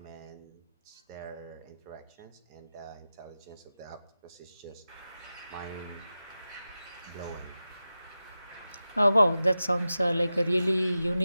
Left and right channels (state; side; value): inverted; both; correlation -0.93